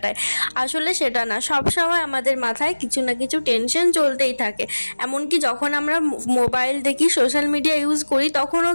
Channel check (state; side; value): inverted; both; correlation -1.00